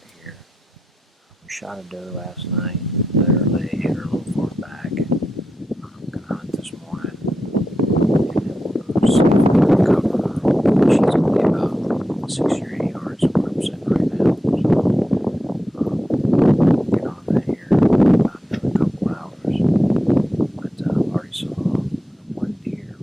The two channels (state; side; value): normal; both; correlation 0.88